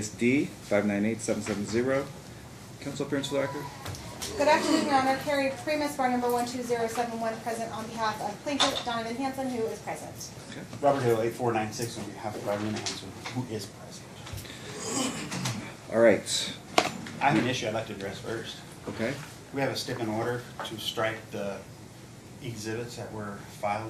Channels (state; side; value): identical; both; correlation 1.00